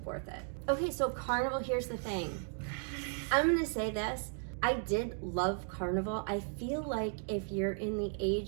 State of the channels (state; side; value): silent; left; 54 dB below the other